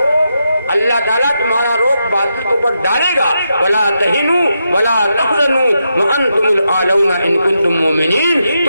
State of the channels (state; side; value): inverted; both; correlation -0.85